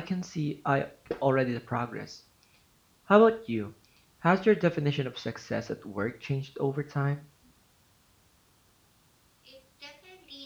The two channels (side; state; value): both; identical; correlation 1.00